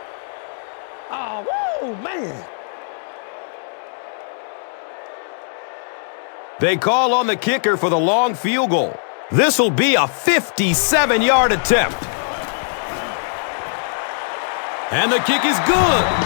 Oh, man. They call on the kicker for the long field goal. This will be a 57-yard attempt. And the kick is good.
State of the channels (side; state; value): right; silent; digital silence